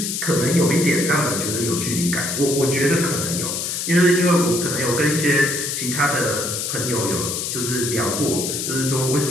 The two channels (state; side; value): noise; left; hiss, 3 dB below the sound